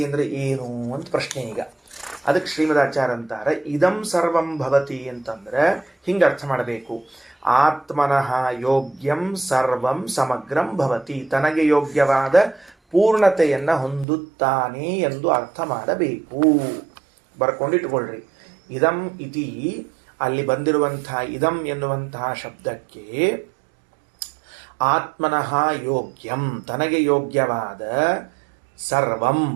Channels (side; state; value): left; drops out; at 14.1 s